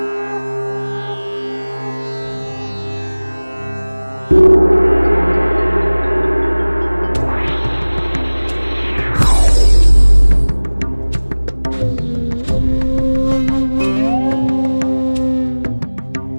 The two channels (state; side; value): inverted; both; correlation -1.00